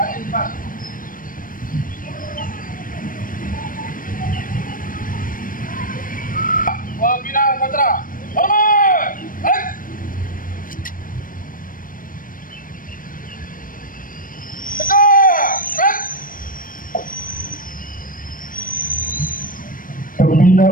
Wabila kontra. Hormat. Pembina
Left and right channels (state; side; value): late; right; 0.40 ms